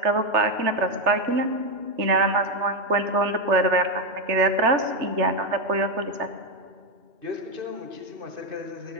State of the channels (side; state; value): left; late; 3.3 ms